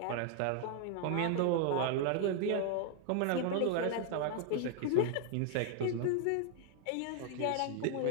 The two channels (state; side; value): different; both; correlation 0.00